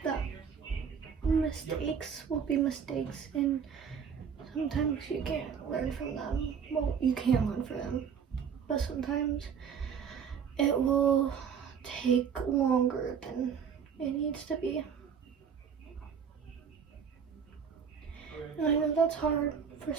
that mistakes will be mistakes, and sometimes you can't learn from them. Well, you can learn from them, but sometimes it will take longer than it needs to be. And I know that's hard for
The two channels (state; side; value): quieter; left; 7.1 dB